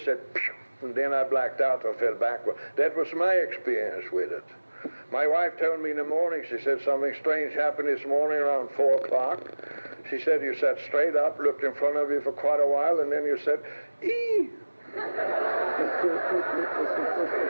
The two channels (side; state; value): both; inverted; correlation -1.00